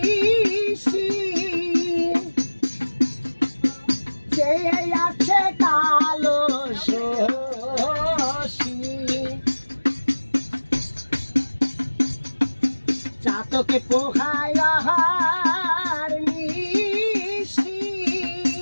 আছে কালো শশী চাতকে পোহায় নিশি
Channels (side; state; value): both; inverted; correlation -1.00